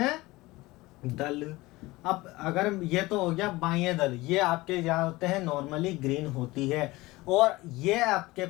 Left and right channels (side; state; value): right; quieter; 20.4 dB